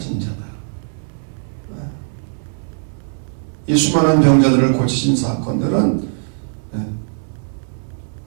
자다. 이 수많은 병자들을 고치신 사건들은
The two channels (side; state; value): left; silent; 66 dB below the other